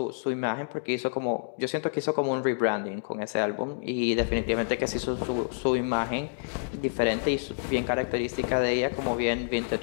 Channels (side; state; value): right; silent; digital silence